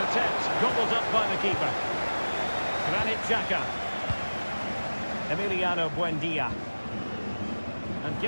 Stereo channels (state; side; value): inverted; both; correlation -1.00